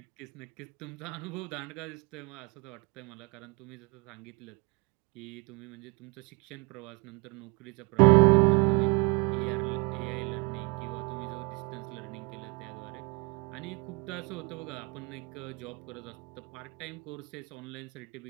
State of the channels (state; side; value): quieter; left; 29.7 dB